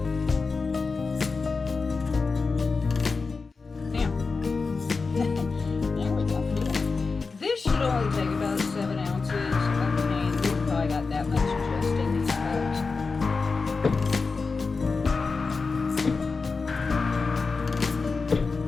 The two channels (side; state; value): right; quieter; 4.4 dB